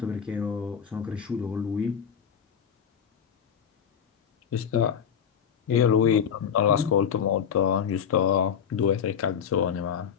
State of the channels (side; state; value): right; quieter; 7.8 dB